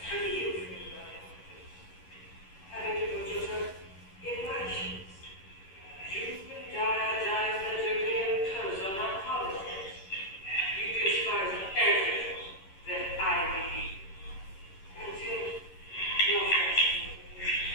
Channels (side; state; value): right; late; 11 ms